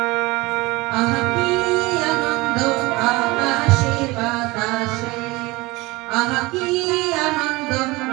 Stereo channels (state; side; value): quieter; left; 22.3 dB